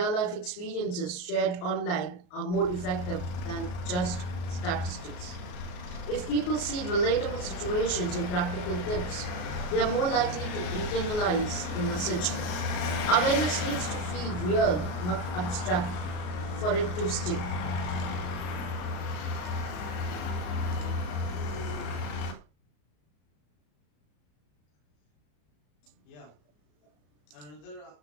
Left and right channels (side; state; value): right; late; 34 ms